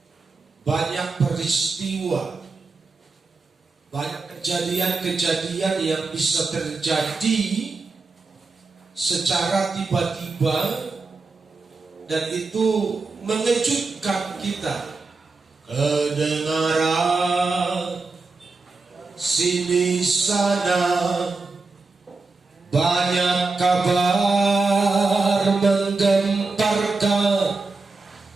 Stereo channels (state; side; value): quieter; left; 3.9 dB